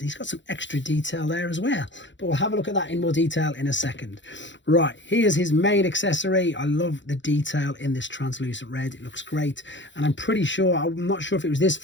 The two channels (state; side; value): late; right; 0.54 ms